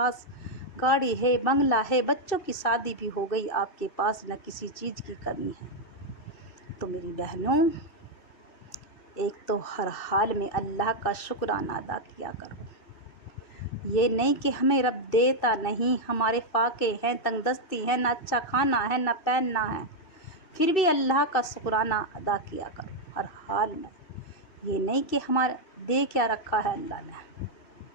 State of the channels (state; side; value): late; right; 2.6 ms